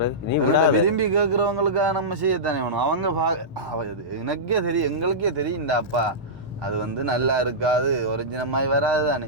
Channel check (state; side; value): normal; both; correlation -0.14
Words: விரும்பி கேட்குறவங்களுக்காக நம்ம செய்யத்தானே வேணும். அவங்க எனக்கே தெரியும் எங்களுக்கே தெரியும் இந்த அப்பா அது வந்து நல்லா இருக்காது ஒரிஜினமாய் வராது